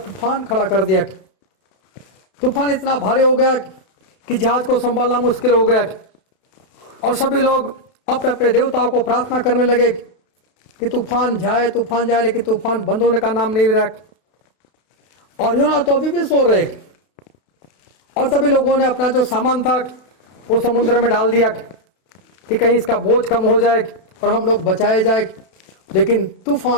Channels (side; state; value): right; late; 32 ms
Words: खड़ा कर दिया। तूफान इतना भारी हो गया कि जहाज को संभालना मुश्किल हो गया, और सभी लोग अपने अपने देवताओं को प्रार्थना करने लगे कि तूफान जाए, लेकिन तूफान बंद होने का नाम नहीं ले रहा। और योना तो अभी भी सो रहे, और सभी लोगों ने अपना जो सामान था वो समुद्र में डाल दिया कि कहीं इसका बोझ कम हो जाए और हम लोग बचाए जाए। लेकिन